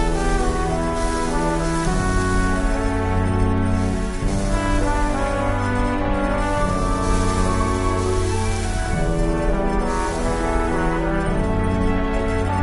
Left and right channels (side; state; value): both; identical; correlation 1.00